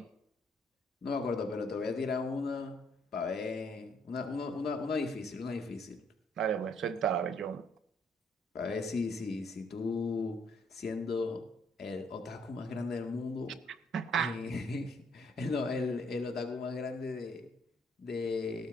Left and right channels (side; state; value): both; normal; correlation 0.67